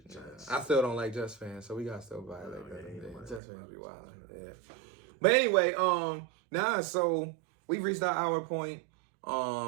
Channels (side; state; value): left; drops out; at 3.4 s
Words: the Jets. I still don't like Jets fans, so we got to still violate that. Jets fans be wild. Yeah. But anyway, so we've reached our hour point.